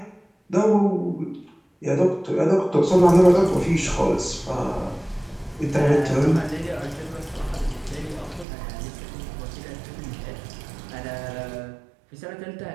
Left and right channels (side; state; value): left; drops out; at 8.5 s